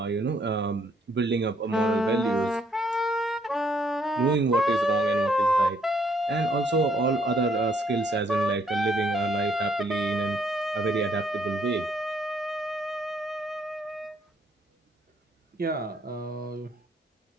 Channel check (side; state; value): both; normal; correlation 0.67